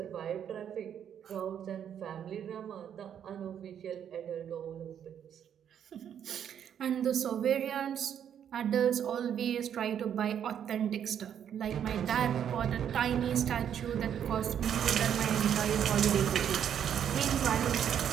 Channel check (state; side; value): quieter; left; 9.0 dB